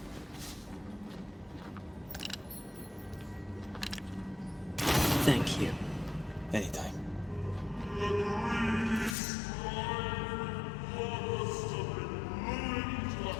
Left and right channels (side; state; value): right; drops out; at 9.2 s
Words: Thank you. Anytime.